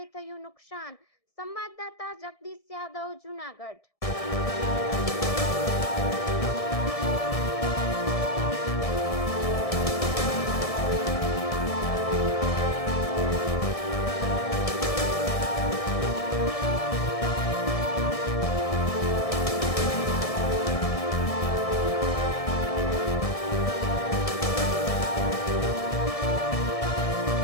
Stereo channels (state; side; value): late; right; 1.7 ms